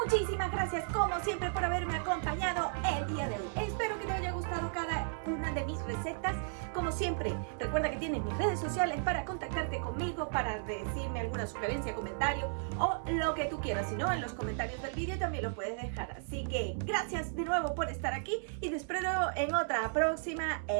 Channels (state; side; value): silent; left; 55 dB below the other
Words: Muchísimas gracias como siempre por haberme acompañado el día de hoy. Espero que te haya gustado cada una de mis recetas. Como siempre, recuerda que tienes mis redes sociales para contactarte conmigo, para decirme alguna sugerencia, comentario o lo que tú quieras. Si no, en los comentarios del vídeo también lo puedes dejar. Así que gracias de nuevo por estar aquí y te espero en otra próxima